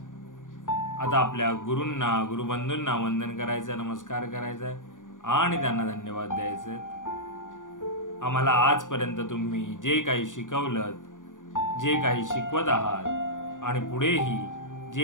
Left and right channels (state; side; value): late; right; 0.87 ms